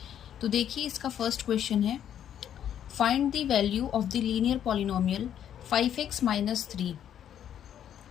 तो देखिए इसका फर्स्ट क्वेश्चन है, find the value of the linear polynomial 5x minus 3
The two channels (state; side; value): quieter; right; 9.9 dB